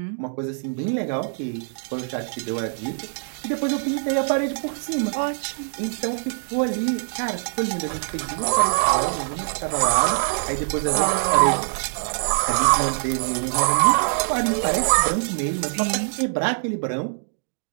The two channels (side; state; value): left; silent; digital silence